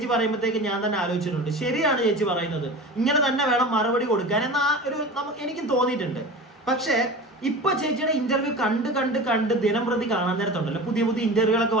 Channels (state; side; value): normal; both; correlation 0.33